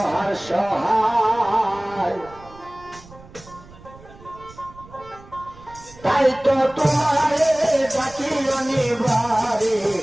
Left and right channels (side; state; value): right; noise; rumble, 21 dB below the sound